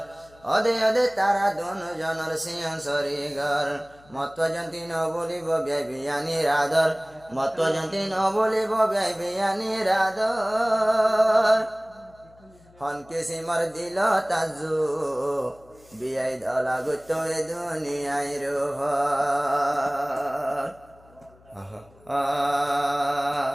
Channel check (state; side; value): noise; left; hum, 27 dB below the sound